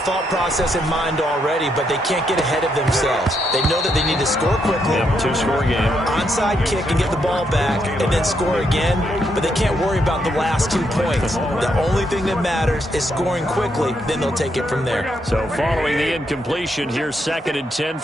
process in mind already, but they can't get ahead of themselves. They know that they need to score quickly. Yep, 2-score game. Onside kick and get the ball back and then score again, but they can't worry about the last 2 points. The only thing that matters is scoring quickly, then they'll take it from there. So following the incompletion, here's 2nd and 10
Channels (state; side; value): normal; both; correlation 0.78